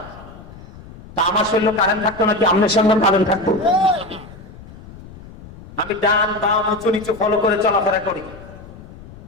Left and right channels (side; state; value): left; noise; rumble, 18 dB below the sound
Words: তা আমার শরীরে কারেন্ট থাকতো নাকি আপনার সঙ্গে কারেন্ট থাকতো? আমি ডান বাম উঁচু নিচু ফলো করে চলাফেরা করি।